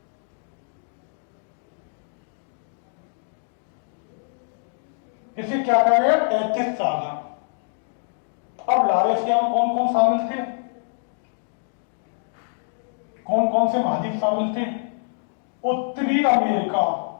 इसे क्या कहा गया? टेथिस सागर। अब लॉरेशिया में कौन कौन शामिल थे? कौन कौन से महाद्वीप शामिल थे? उत्तरी अमेरिका,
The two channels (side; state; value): right; silent; digital silence